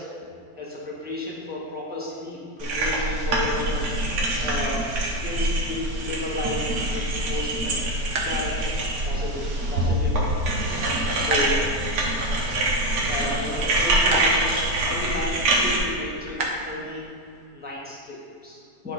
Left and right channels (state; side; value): late; left; 4.4 ms